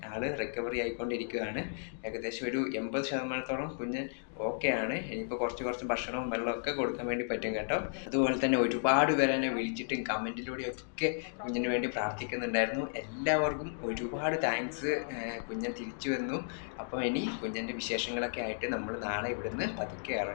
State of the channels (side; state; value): right; silent; digital silence